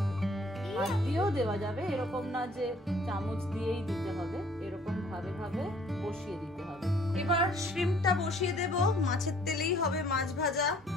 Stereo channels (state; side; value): normal; both; correlation 0.58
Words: হাত দিয়েও দেওয়া যাবে, এরকম না যে চামচ দিয়েই দিতে হবে, এরকম ভাবে ভাবে বসিয়ে দিতে হবে। এবার শ্রিম্পটা বসিয়ে দেব। মাছের তেলেই হবে মাছ ভাজা।